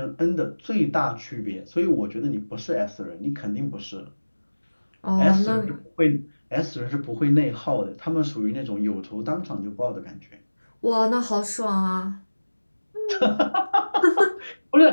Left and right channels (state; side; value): inverted; both; correlation -1.00